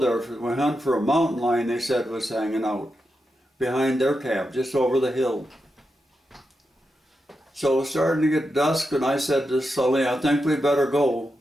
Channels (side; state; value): both; normal; correlation 0.87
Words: We hunted for a mountain lion, they said, was hanging out behind their camp, just over the hill. So it was starting to get dusk, and I said to Sully, I think we better go.